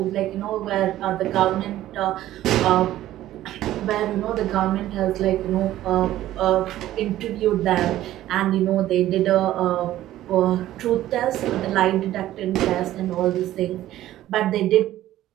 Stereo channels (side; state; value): left; quieter; 14.0 dB